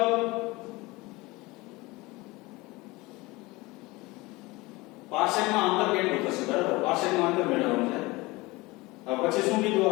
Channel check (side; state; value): right; quieter; 22.2 dB